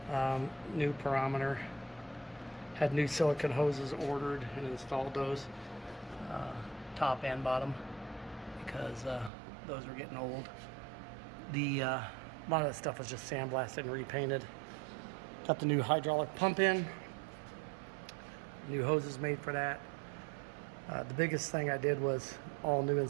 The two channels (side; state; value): left; drops out; at 9.3 s